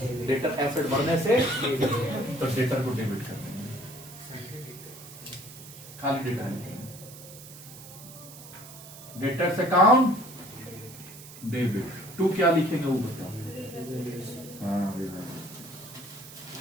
डेटर एसेट बढ़ने से तो डेटर को डेबिट कर देंगे, खाली डेटर लिखेंगे, डेटर्स अकाउंट डेबिट। टू क्या लिखेंगे वो बताओ? हाँ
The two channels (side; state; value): right; noise; hiss, 16 dB below the sound